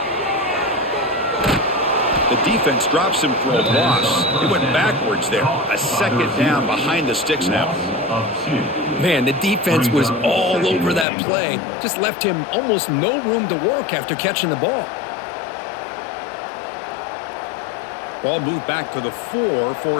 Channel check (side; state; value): right; drops out; at 11.1 s